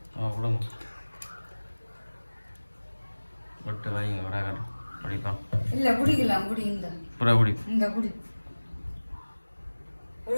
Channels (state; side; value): inverted; both; correlation -1.00